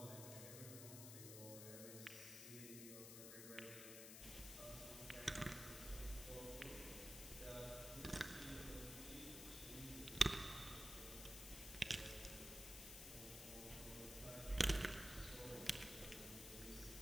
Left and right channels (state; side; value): noise; left; hiss, 7 dB below the sound